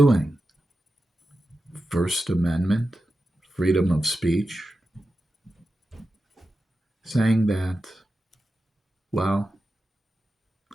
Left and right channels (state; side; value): normal; both; correlation 0.91